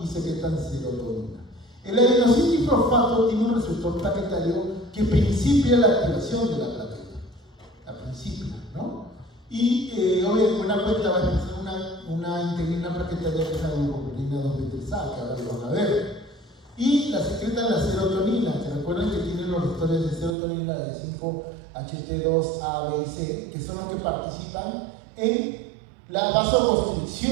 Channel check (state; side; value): drops out; left; at 20.4 s